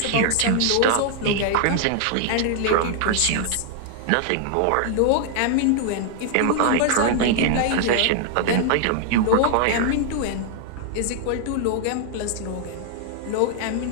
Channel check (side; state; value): both; different; correlation 0.00